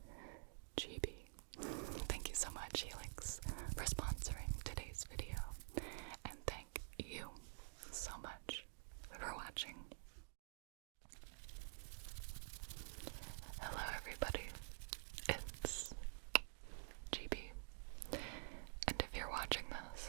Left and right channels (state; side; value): silent; left; digital silence